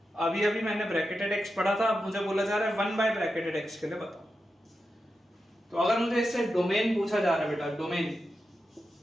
अभी अभी मैंने ब्रैकेटेड x पढ़ा था, अब मुझे बोला जा रहा है 1 बाय ब्रैकेटेड x के लिए बताओ। तो अगर मुझे इससे डोमेन पूछा जा रहा है बेटा, डोमेन,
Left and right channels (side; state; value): both; normal; correlation 0.89